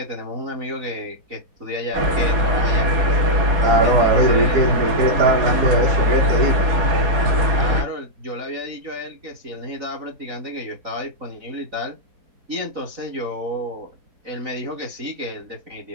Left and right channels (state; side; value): late; left; 4.0 ms